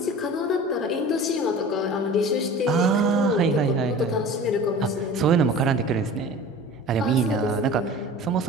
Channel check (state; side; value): normal; both; correlation 0.39